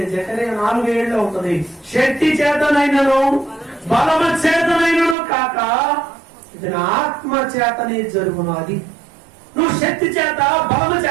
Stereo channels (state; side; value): drops out; left; at 5.2 s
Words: జకరియా 4:7 ఉంటుంది, శక్తి చేతనైనను బలము చేతనైనను కాక ఇది నా ఆత్మ చేతనే జరుగును. అది నువ్వు శక్తి చేత బలము